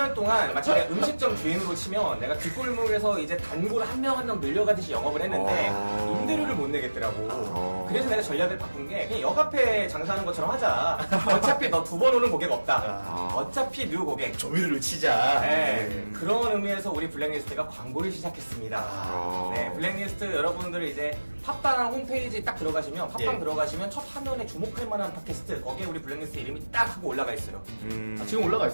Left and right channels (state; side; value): inverted; both; correlation -1.00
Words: 동안 마치 내가 음식점 주인으로 치면 내가 뒷골목에서 이제 단골 한 명 한 명 늘려가듯이 영업을 했는데 임대료를 못 내겠더라고. 그래서 내가 전략을 바꾼 게 그냥 역 앞에 장사하는 것처럼 하자. 어차피 너 2번 오는 고객 없다. 어차피 뉴 고객. 조미료를 치자. 네, 그런 의미에서 우리 블랙리스트가 광고를 시작했습니다. 아. 네, 블랙리스트 여러분들 이제 팟빵 홈페이지 딱 들어가시면 팟빵 예. 들어가시면 첫 화면에 주목할 만한 팟캐스트 거기에 우리 블랙리스트 이름이 딱 하고 올라가 있어요. 아, 지금 올라가